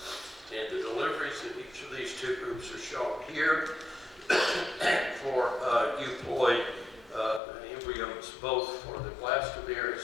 And the deliveries in each of these two groups are shown here for euploid embryos, both for the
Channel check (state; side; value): drops out; right; at 7.4 s